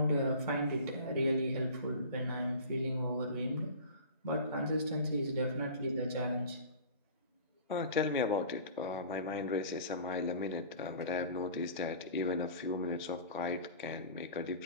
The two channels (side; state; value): both; inverted; correlation -0.40